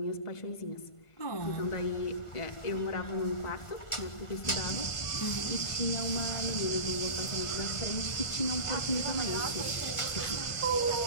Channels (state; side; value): late; right; 1.5 ms